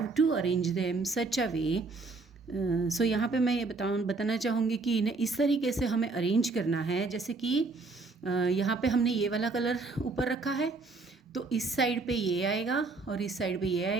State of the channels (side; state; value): left; quieter; 3.7 dB